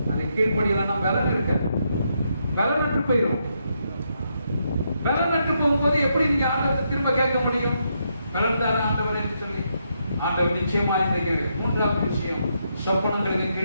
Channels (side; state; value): both; inverted; correlation -0.79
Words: அதை கீழ்படியலன்னா பலன் இருக்க, பலனற்று போயிடும். பலனற்று போகும்போது எப்படி நீங்க ஆண்டவரை திரும்ப கேட்க முடியும்? பலன் தான ஆண்டவர் என்று சொல்லி ஆண்டவர் நிச்சயமா இந்த கேள்வி. மூன்றாவது விஷயம், சொப்பனங்களுக்கு